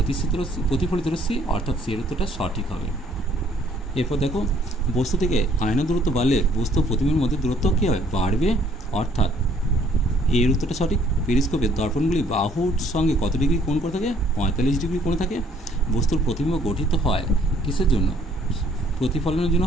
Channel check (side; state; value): both; normal; correlation 0.62